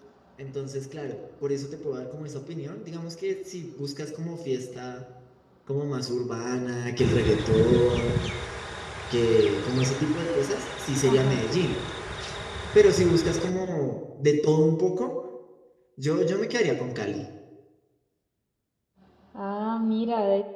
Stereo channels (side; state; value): both; identical; correlation 1.00